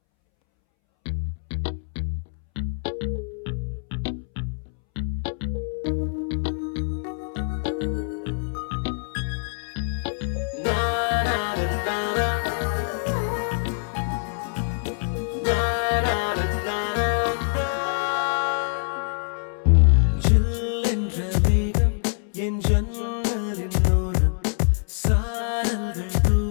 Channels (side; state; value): right; silent; 62 dB below the other